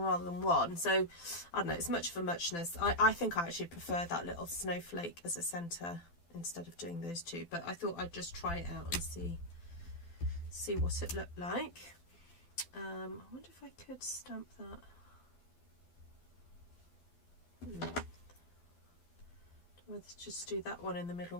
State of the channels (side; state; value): right; late; 12 ms